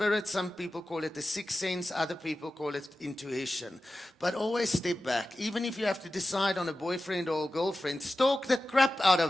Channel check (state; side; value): normal; both; correlation 0.94